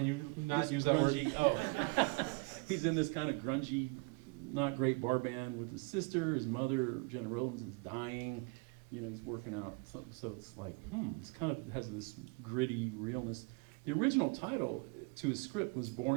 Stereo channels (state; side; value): quieter; left; 30.8 dB